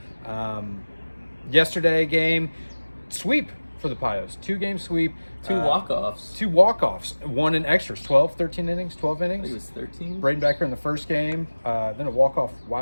Yesterday game, sweep for the Padres. 2-game sweep. Two walk-offs. 2 walk-offs. One in extras. 13 innings, 12 innings. I think it was 13. Braden Becker in the first game. Then a walk-off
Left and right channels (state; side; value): inverted; both; correlation -1.00